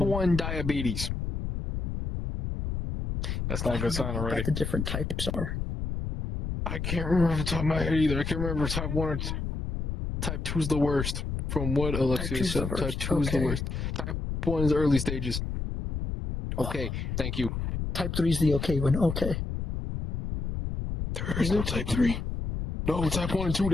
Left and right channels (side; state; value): left; noise; rumble, 3 dB below the sound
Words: diabetes. That's not a good sign already. What the different types are. I can't remember off the top of my head either. I can't remember type 1 or type 2 is the worst. From what Alexia said, type 2 is the worst. Type 1 is early stages. Okay, thank you. Type 3 is the okay one. Okay. There is no type 3. No, type 1 and 2,